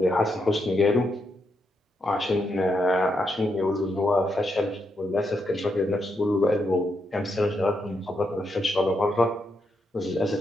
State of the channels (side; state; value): both; normal; correlation 0.81